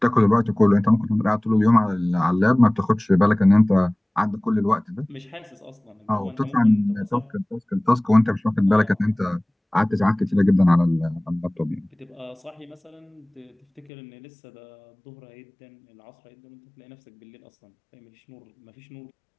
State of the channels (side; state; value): right; drops out; at 13.9 s